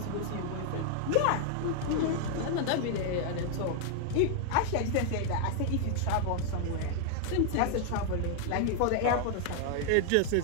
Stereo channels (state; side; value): different; both; correlation 0.00